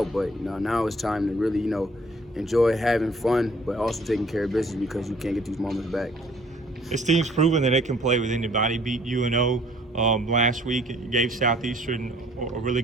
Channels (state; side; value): normal; both; correlation 0.57